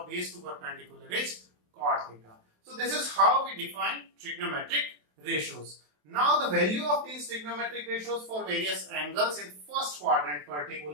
of base to perpendicular is cot theta. So this is how we define trigonometric ratios. Now the value of these trigonometric ratios for various angles in first quadrant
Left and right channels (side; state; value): left; late; 27 ms